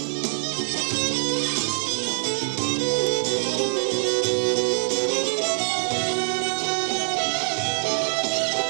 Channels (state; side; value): silent; left; digital silence